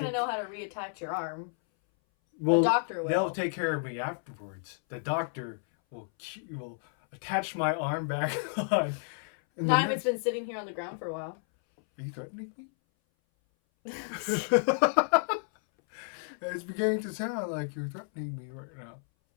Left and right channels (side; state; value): right; silent; 57 dB below the other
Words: take- to know how to reattach your arm. Well, a doctor will. They'll take care of me afterwards. The doctor will attach my arm back on. And the Not if nurse- it's been sitting here on the ground for a while. Are you threatening me? It's beginning to sound like you're threatening me right now.